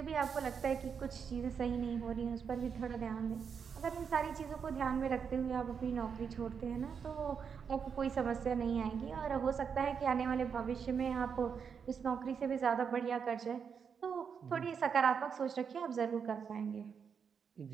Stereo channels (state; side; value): quieter; left; 6.6 dB